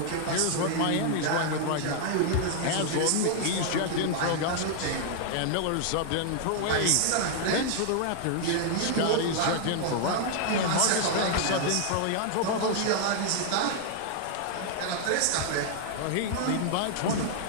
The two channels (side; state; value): both; different; correlation 0.00